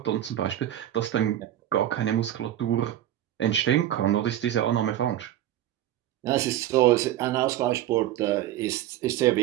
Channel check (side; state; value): left; quieter; 12.5 dB